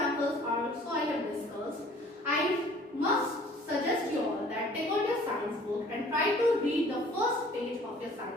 are also I have discussed. I must suggest you all that take out your science book and try to read the first page of your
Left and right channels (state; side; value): normal; both; correlation 0.53